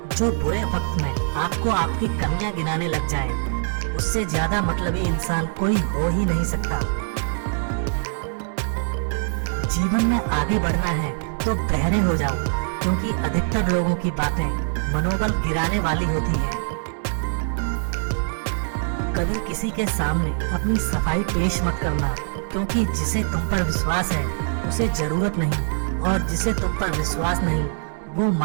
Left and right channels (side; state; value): left; silent; digital silence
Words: जो बुरे वक्त में आपको आपकी कमियां गिनाने लग जाए, उससे ज्यादा मतलबी इंसान कोई हो ही नहीं सकता। जीवन में आगे बढ़ना है तो बहरे हो जाओ, क्योंकि अधिकतर लोगों की बातें मनोबल गिराने वाली होती है। कभी किसी के सामने अपनी सफाई पेश मत करना, क्योंकि जिसे तुम पर विश्वास है उसे जरूरत नहीं, और जिसे तुम पर विश्वास नहीं वो